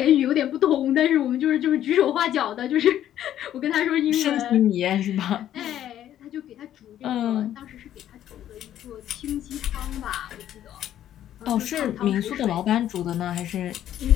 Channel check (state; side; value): quieter; right; 11.5 dB